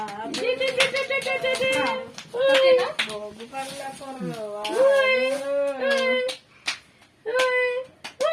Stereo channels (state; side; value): identical; both; correlation 1.00